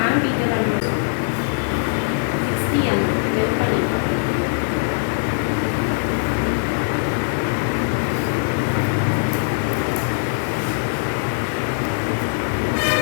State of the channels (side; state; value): right; silent; digital silence